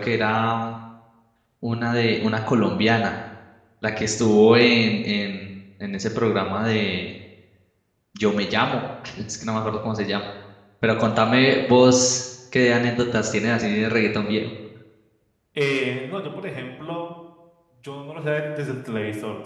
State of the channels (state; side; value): identical; both; correlation 1.00